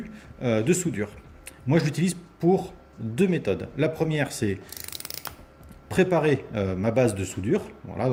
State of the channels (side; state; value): both; identical; correlation 1.00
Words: de soudure. Moi je l'utilise pour deux méthodes. La première c'est préparer ma base de soudure, voilà,